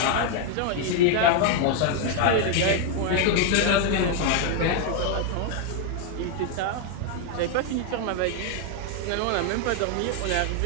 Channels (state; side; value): different; both; correlation 0.01